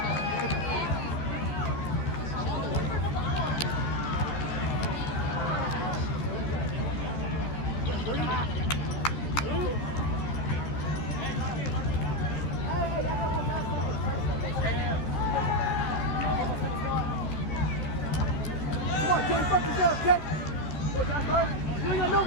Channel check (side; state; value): right; late; 14 ms